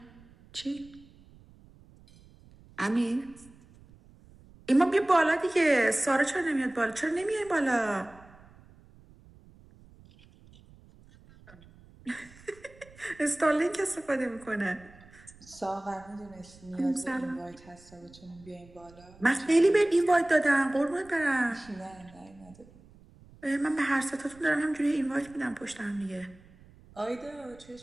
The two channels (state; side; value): noise; right; rumble, 24 dB below the sound